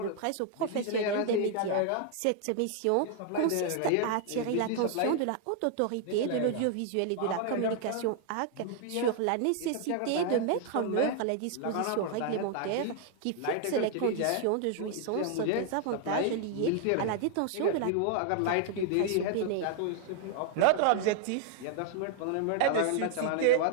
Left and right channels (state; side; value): different; both; correlation 0.00